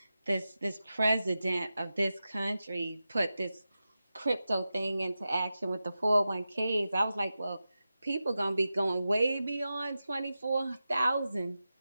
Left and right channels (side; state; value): both; inverted; correlation -0.93